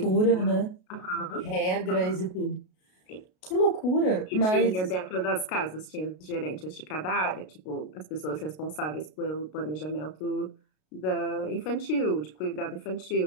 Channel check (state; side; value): late; right; 33 ms